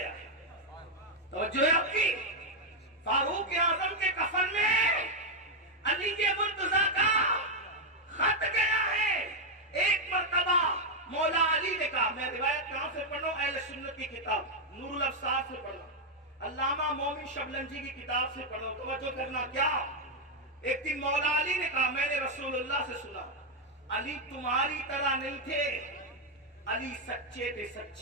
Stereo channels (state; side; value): normal; both; correlation 0.01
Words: ہے، توجہ ہے آپ کی، فاروق اعظم کے کفن میں علی مرتضیٰ کا خط گیا ہے۔ ایک مرتبہ مولا علی نے کہا، میں روایت کہاں سے پڑھ رہا ہوں، اہل سنت کی کتاب نور الابصار سے پڑھ رہا ہوں، علامہ مومن شبلنجی کی کتاب سے پڑھ رہا ہوں، توجہ کرنا، کیا ایک دن مولا علی نے کہا، میں نے رسول اللہ سے سنا، علی تمہاری طرح نہیں تھے، علی سچے تھے،